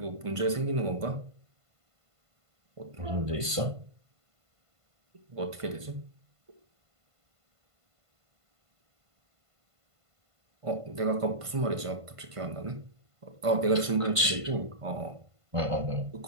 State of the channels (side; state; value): left; late; 1.5 ms